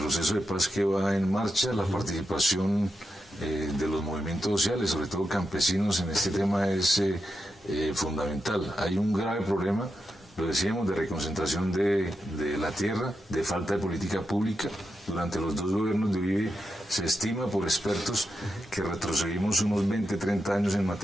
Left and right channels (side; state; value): both; normal; correlation 0.87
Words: de paz que va en marcha, la participación de los movimientos sociales, sobre todo campesinos, en este tema es fundamental. Hay un grave problema, lo decíamos, de reconcentración de la tierra, de falta de política pública. Durante los 2 gobiernos de Uribe se estima por expertos que retrocedimos unos 20, 30 años en